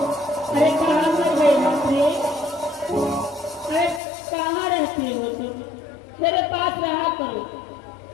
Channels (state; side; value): drops out; right; at 4.0 s